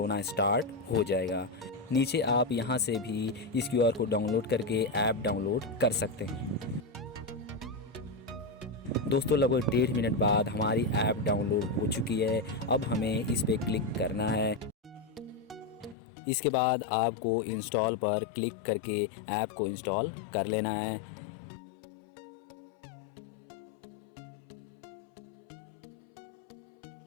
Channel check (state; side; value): drops out; right; at 16.0 s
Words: स्टार्ट हो जाएगा। नीचे आप यहाँ से भी इस QR को डाउनलोड करके ऐप डाउनलोड कर सकते हैं। दोस्तों लगभग 1.5 मिनट बाद हमारी ऐप डाउनलोड हो चुकी है। अब हमें इस पे क्लिक करना है। इसके बाद आपको इंस्टॉल पर क्लिक करके ऐप को इंस्टॉल कर लेना है।